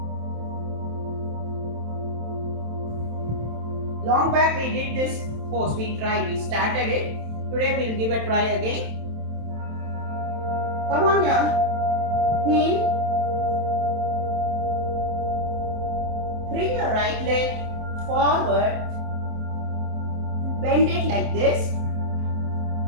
Long back we did this pose. We started it. Today we'll give a try again. Come on your heel. Bring your right leg forward. Bend it like this.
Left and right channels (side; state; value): left; late; 27 ms